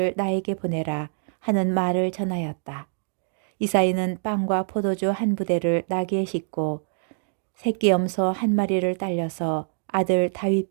나에게 보내라 하는 말을 전하였다. 이사이는 빵과 포도주 한 부대를 나귀에 싣고 새끼 염소 한 마리를 딸려서 아들 다윗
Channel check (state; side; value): silent; left; digital silence